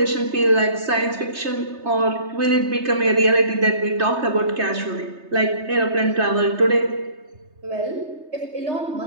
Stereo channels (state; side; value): late; left; 3.3 ms